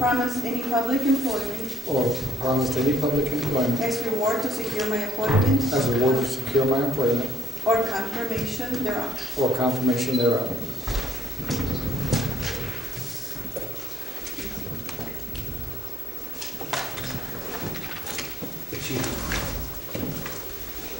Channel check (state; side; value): normal; both; correlation 0.68